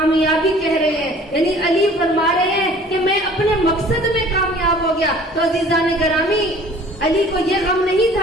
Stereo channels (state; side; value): normal; both; correlation 0.50